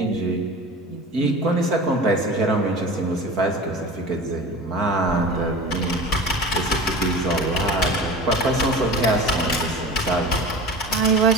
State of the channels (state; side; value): normal; both; correlation 0.35